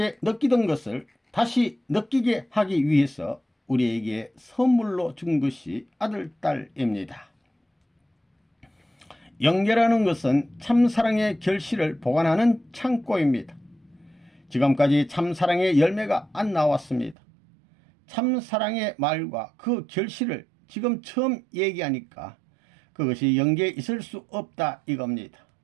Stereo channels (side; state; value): left; drops out; at 17.2 s